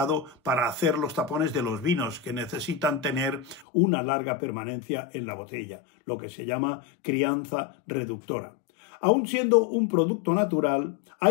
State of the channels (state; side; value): drops out; right; at 3.7 s